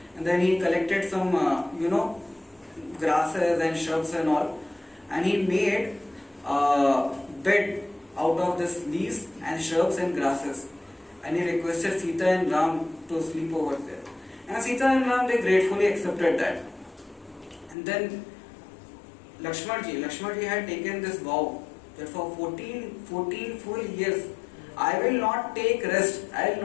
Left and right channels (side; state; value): right; drops out; at 17.8 s